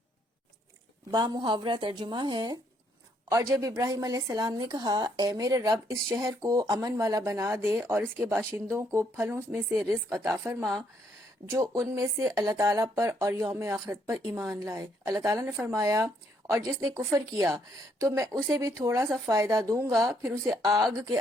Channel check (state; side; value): normal; both; correlation 0.71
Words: بامحاورہ ترجمہ ہے، اور جب ابراہیم علیہ السلام نے کہا، اے میرے رب، اس شہر کو امن والا بنا دے اور اس کے باشندوں کو پھلوں میں سے رزق عطا فرما جو ان میں سے اللہ تعالیٰ پر اور یوم آخرت پر ایمان لائے۔ اللہ تعالیٰ نے فرمایا، اور جس نے کفر کیا تو میں اسے بھی تھوڑا سا فائدہ دوں گا، پھر اسے آگ کے